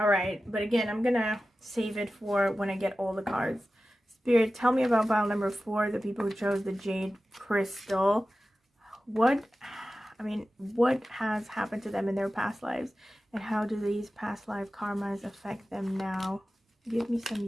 right, but again, I'm gonna save it for when I get all the cards. Spirit, tell me about pile number 4, the people who chose the jade crystal. What has happened to them in their past lives, and how do these past life karmas affect them now? Give me some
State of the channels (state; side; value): normal; both; correlation 0.94